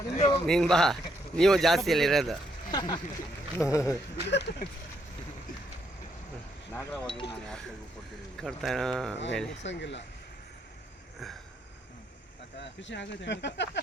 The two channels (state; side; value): normal; both; correlation 0.74